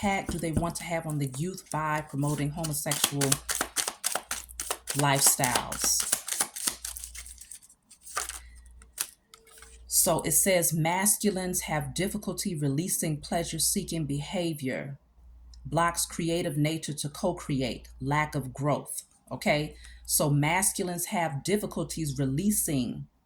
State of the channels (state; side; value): identical; both; correlation 1.00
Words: do they want to have on the youth by promoting homosexual lifestyles? So it says masculines have difficulty releasing pleasure-seeking behavior, blocks creative nature to co-create, lack of growth. Okay, so masculines have difficulties releasing